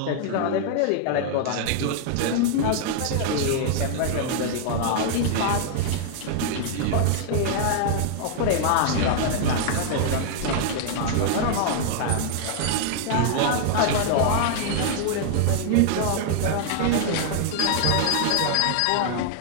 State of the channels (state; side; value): different; both; correlation -0.01